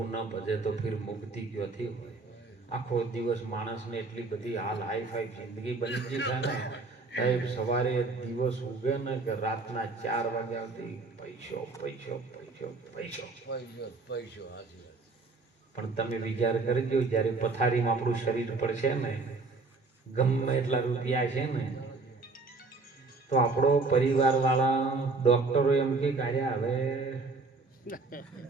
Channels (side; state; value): left; quieter; 3.7 dB